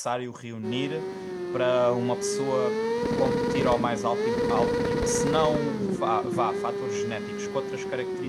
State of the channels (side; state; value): both; identical; correlation 1.00